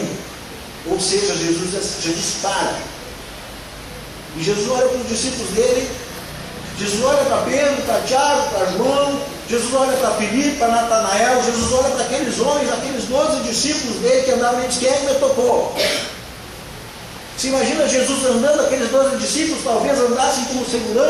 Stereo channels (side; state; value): both; identical; correlation 1.00